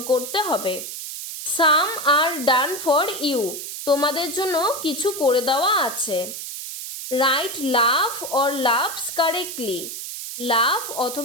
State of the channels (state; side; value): noise; right; hiss, 8 dB below the sound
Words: করতে হবে। সাম আর ডান ফর ইউ তোমাদের জন্য কিছু করে দেওয়া আছে। Write love or loves correctly. Love